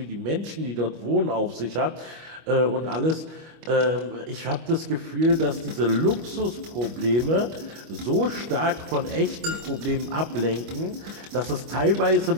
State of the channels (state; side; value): late; left; 25 ms